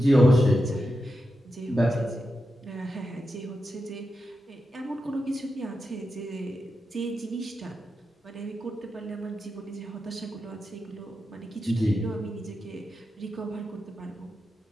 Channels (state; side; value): normal; both; correlation 0.89